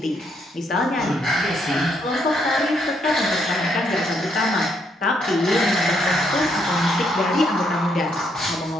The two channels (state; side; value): normal; both; correlation 0.74